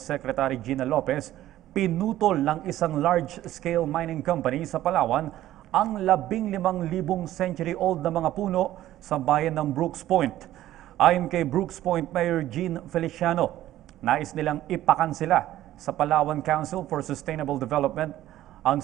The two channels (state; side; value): quieter; left; 13.9 dB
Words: Gina Lopez, pinutol ng isang large-scale mining company sa Palawan ang 15,000 century-old na mga puno sa bayan ng Brooks Point. Ayon kay Brooks Point Mayor Jean Feliciano, nais nilang ipakansela sa Palawan Council for Sustainable Development ang